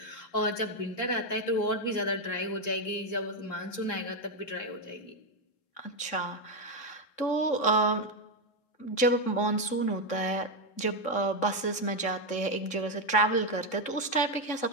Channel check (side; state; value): right; late; 3.7 ms